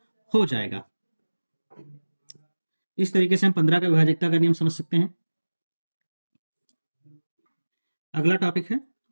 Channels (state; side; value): inverted; both; correlation -1.00